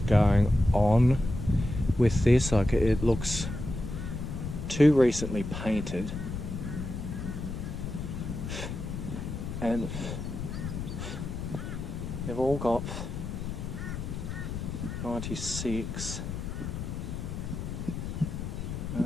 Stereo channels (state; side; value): noise; left; rumble, 5 dB below the sound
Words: going on with this. Like, it looks too recently painted, and they've all got 96.